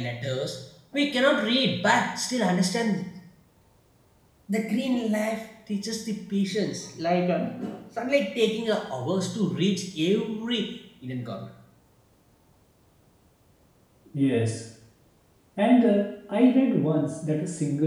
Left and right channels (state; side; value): identical; both; correlation 1.00